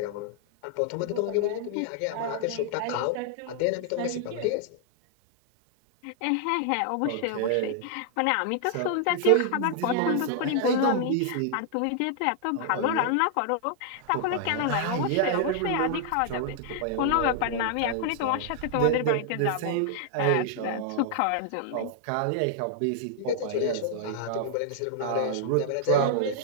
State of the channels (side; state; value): both; different; correlation -0.01